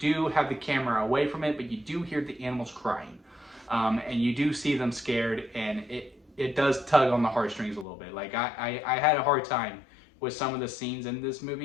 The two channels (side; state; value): right; drops out; at 7.9 s